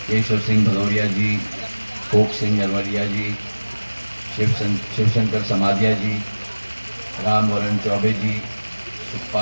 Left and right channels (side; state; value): both; inverted; correlation -1.00